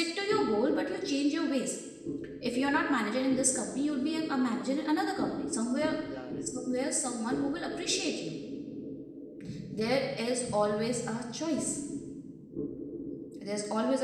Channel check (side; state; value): both; identical; correlation 1.00